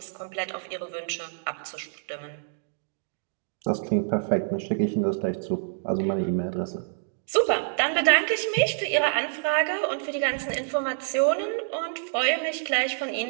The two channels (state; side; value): silent; left; digital silence